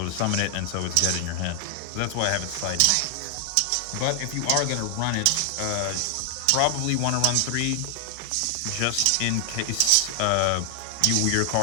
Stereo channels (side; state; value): both; different; correlation 0.00